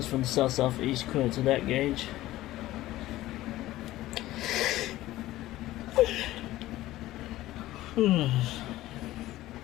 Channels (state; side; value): quieter; right; 16.0 dB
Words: from the south-southeast, according to that gauge. County